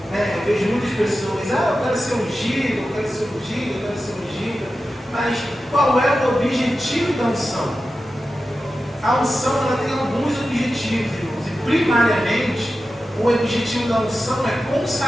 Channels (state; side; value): normal; both; correlation 0.92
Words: Eu vejo muitas pessoas, eu quero ser ungido, eu quero ser ungido, eu quero ser ungido. Mas qual é o objetivo da unção? A unção ela tem alguns objetivos, irmãos. E primariamente, o objetivo da unção é